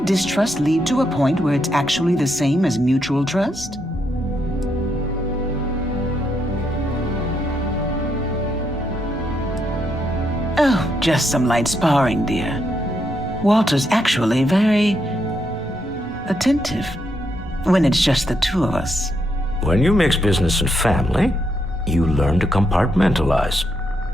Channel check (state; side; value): normal; both; correlation 0.78